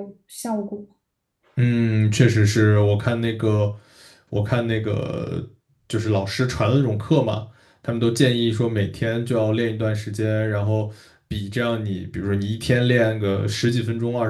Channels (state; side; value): identical; both; correlation 1.00